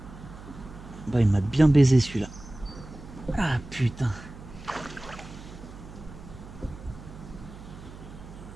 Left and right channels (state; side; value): noise; right; hum, 16 dB below the sound